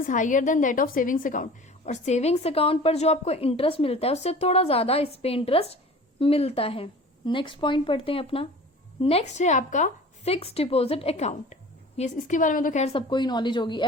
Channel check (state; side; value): normal; both; correlation 0.42